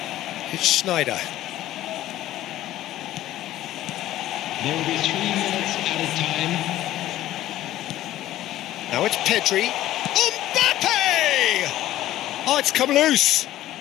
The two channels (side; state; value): right; quieter; 14.1 dB